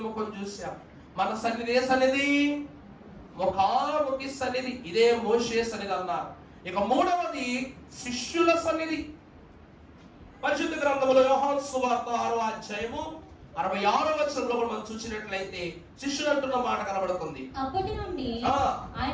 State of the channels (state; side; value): identical; both; correlation 1.00